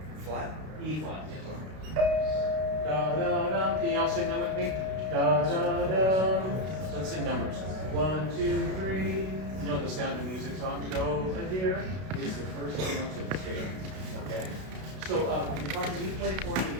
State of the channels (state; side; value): late; left; 32 ms